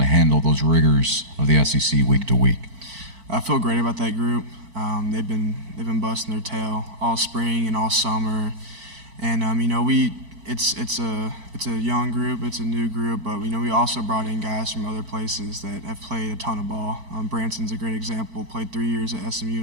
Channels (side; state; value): left; late; 4.5 ms